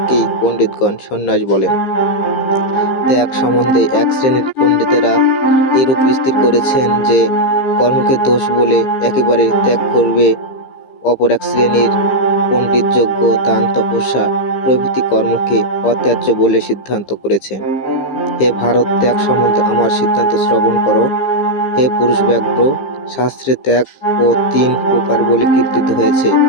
পণ্ডিতগণ সন্ন্যাস বলেন। ত্যাগ সম্বন্ধে এক শ্রেণীর পণ্ডিতেরা এরূপ স্থির করেছেন যে কর্মকে দোষ বলে একেবারে ত্যাগ করবে, অপর এক শ্রেণীর পণ্ডিত যজ্ঞ, দান, তপস্যা প্রভৃতি কর্মকে অত্যাজ্য বলে সিদ্ধান্ত করেছেন। হে ভারত, ত্যাগ সম্বন্ধে আমার সিদ্ধান্ত শ্রবণ করো। হে পুরুষ ব্যাঘ্র, শাস্ত্রে ত্যাগ ও 3 প্রকার বলে কীর্তিত হয়েছে।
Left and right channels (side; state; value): right; late; 15 ms